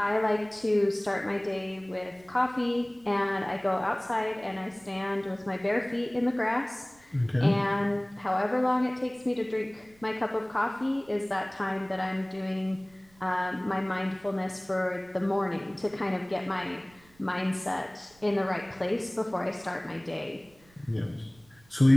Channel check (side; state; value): right; noise; rumble, 29 dB below the sound